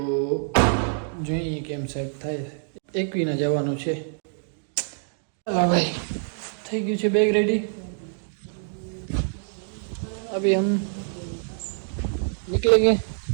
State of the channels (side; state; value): left; silent; digital silence